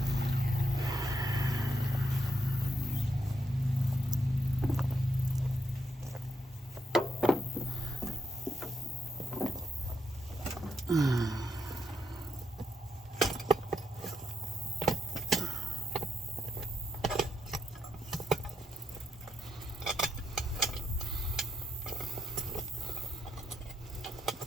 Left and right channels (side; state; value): both; normal; correlation 0.81